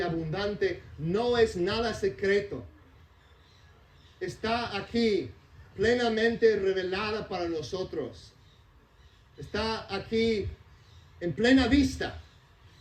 no es nada secreto. Está aquí, plenamente revelada para nosotros. Está aquí en plena vista.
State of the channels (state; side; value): identical; both; correlation 1.00